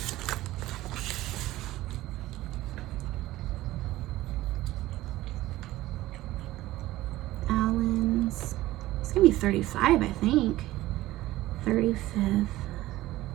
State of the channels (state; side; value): quieter; left; 16.5 dB